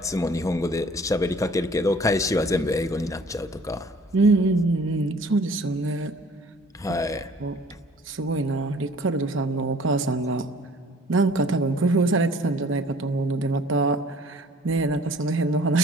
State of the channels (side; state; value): both; normal; correlation 0.53